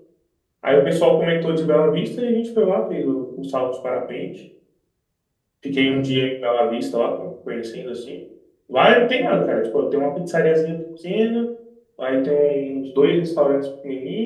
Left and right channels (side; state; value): both; identical; correlation 1.00